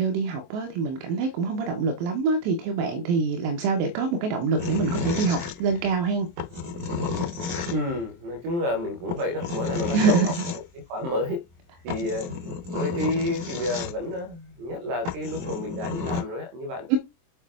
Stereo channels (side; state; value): left; late; 23 ms